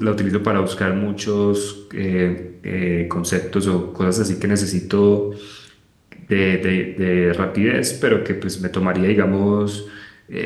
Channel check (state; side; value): identical; both; correlation 1.00